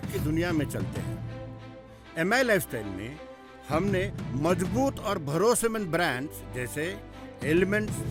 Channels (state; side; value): identical; both; correlation 1.00